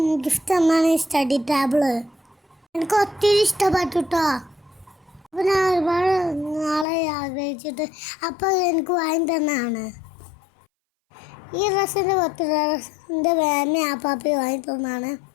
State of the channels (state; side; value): drops out; right; at 6.9 s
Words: ഗിഫ്റ്റ് തന്നാണ് ഈ സ്റ്റഡി ടേബിള്. എനിക്ക് ഒത്തിരി ഇഷ്ടപ്പെട്ടു കേട്ടോ. അപ്പോൾ ഞാൻ ഒരുപാട് നാളെ ആഗ്രഹിച്ചിട്ട് അപ്പോൾ എനിക്ക് വാങ്ങി തന്നാണ്. ഈ ഡ്രസ്സിൻ്റെ എൻ്റെ മാമി ആപ്പാപ്പി വാങ്ങി തന്നാണ്.